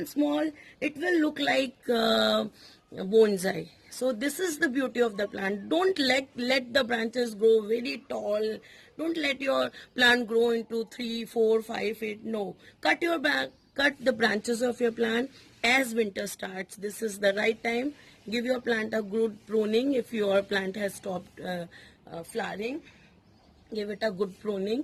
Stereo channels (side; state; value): both; identical; correlation 1.00